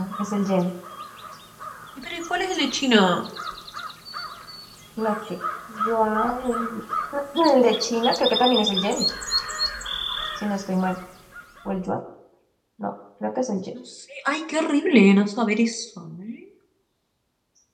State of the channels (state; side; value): identical; both; correlation 1.00